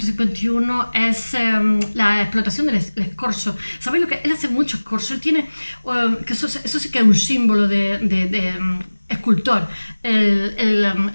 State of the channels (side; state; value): both; inverted; correlation -1.00